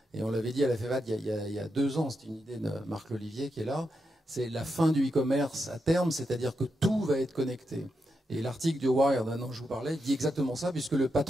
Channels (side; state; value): both; normal; correlation 0.85